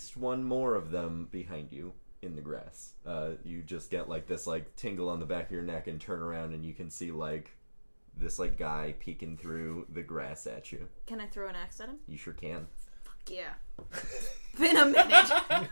one more of them behind you in the grass. You just get like this like tingle on the back of your neck and turn around and you can see like this like guy peeking through the grass at you. Can I throw an axe at him? You sure can. Fuck yeah. Been a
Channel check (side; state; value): both; inverted; correlation -1.00